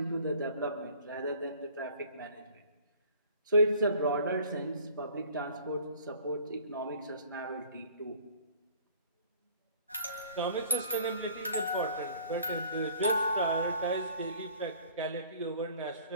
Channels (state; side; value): inverted; both; correlation -0.53